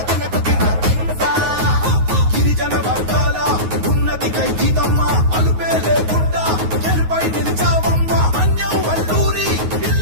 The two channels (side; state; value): left; late; 9.5 ms